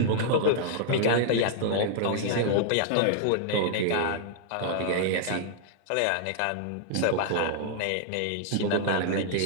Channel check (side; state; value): both; different; correlation -0.01